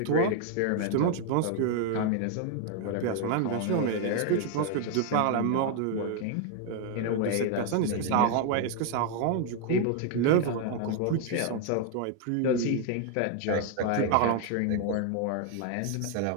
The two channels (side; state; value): both; different; correlation 0.01